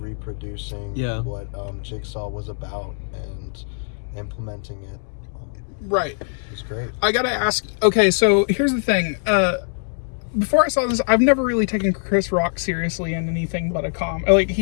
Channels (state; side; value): silent; right; 61 dB below the other